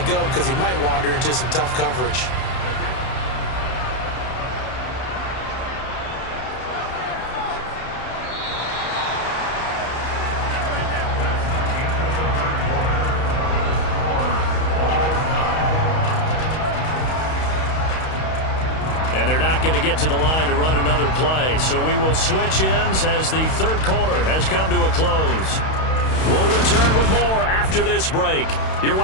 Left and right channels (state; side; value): late; right; 31 ms